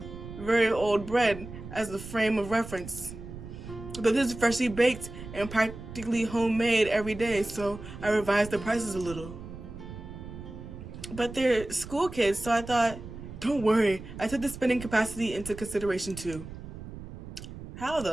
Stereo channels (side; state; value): right; noise; rumble, 12 dB below the sound